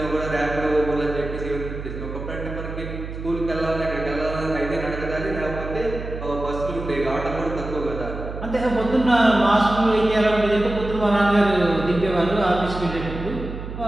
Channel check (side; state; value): right; noise; hum, 8 dB below the sound